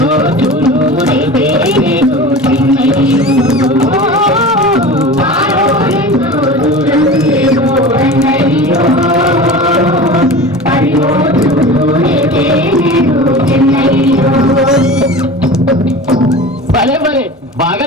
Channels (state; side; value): normal; both; correlation 0.34